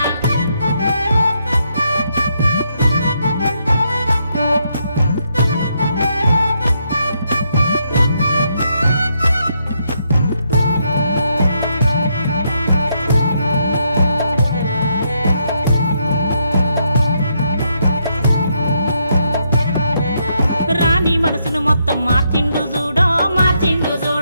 రాణి మనసును మొత్తం మార్చిండు చూడో మార్చిండు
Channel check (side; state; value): both; inverted; correlation -0.77